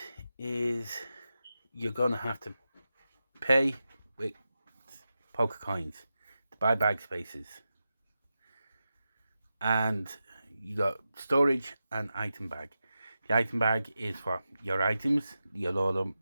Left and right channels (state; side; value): inverted; both; correlation -0.91